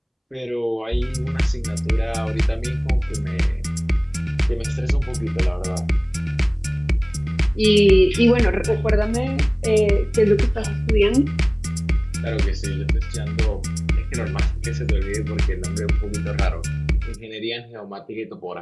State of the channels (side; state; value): both; identical; correlation 1.00